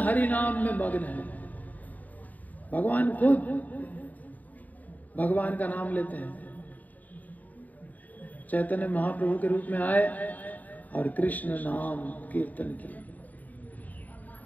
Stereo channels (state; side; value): late; right; 0.078 ms